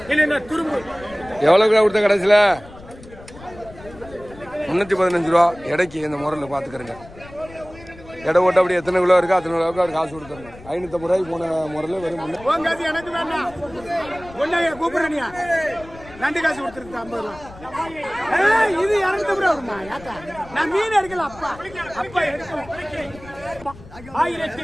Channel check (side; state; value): left; noise; rumble, 19 dB below the sound